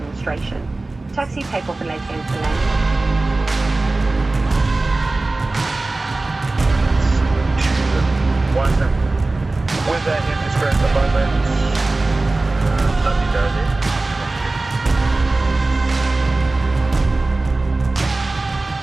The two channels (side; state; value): left; quieter; 3.1 dB